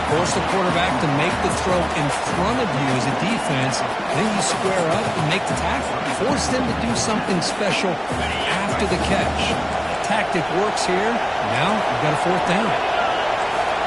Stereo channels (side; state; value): both; identical; correlation 1.00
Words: Force the quarterback to make the throw in front of you as a defense. Then you square up and make the tackle. Force them to do something special after the catch. Tactic works here. Now we've got a fourth down.